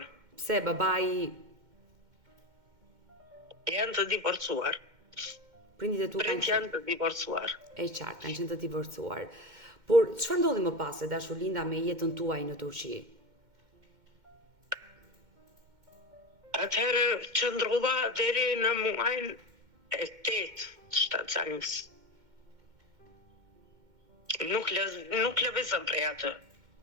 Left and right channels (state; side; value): late; left; 2.1 ms